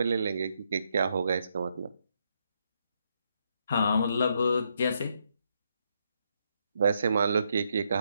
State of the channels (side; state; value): both; inverted; correlation -0.77